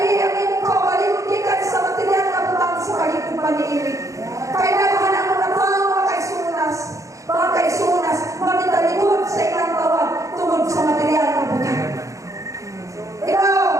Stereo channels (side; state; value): left; late; 0.15 ms